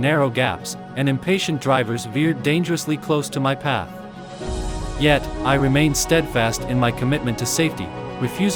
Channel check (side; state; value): both; identical; correlation 1.00